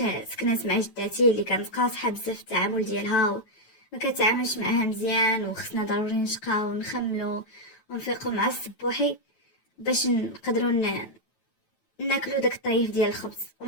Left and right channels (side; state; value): right; late; 9.1 ms